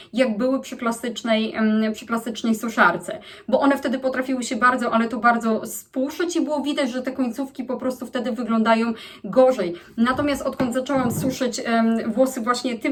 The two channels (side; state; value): both; identical; correlation 1.00